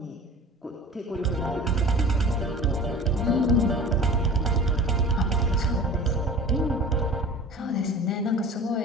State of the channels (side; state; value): both; normal; correlation 0.40